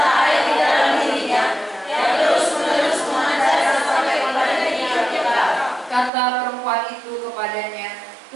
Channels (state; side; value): drops out; left; at 6.1 s